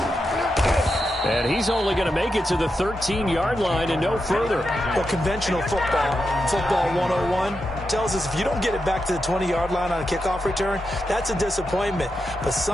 And he's only going to make it to the 13-yard line and no further. Well, conventional football 101, tells us if you don't get it back to the 20-yard line on a kickoff return, that's a disappointment. But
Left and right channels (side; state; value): both; normal; correlation 0.87